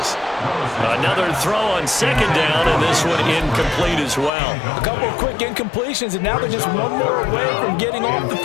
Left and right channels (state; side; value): drops out; right; at 4.3 s